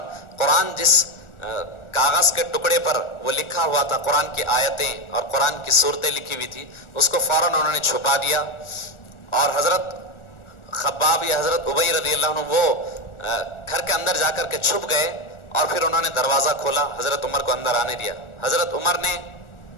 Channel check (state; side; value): late; right; 1.4 ms